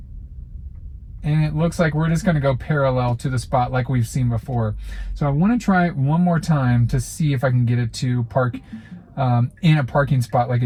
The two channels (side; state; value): both; identical; correlation 1.00